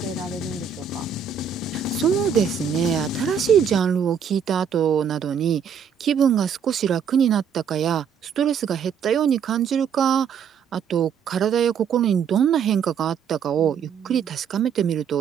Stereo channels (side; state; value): left; quieter; 7.2 dB